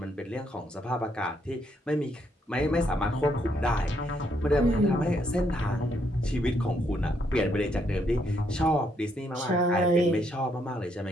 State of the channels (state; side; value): normal; both; correlation 0.74